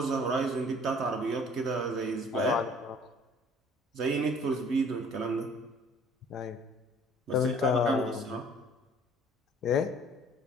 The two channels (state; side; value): normal; both; correlation 0.54